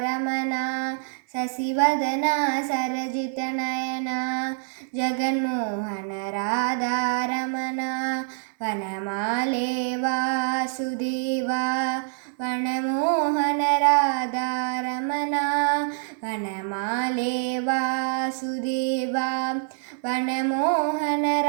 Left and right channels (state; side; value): silent; left; 58 dB below the other